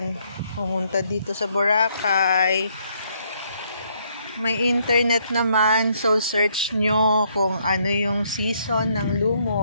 pumunta dito sa Boracay, may internet naman, so search nyo kung ano yung season ng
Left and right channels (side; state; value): both; inverted; correlation -0.71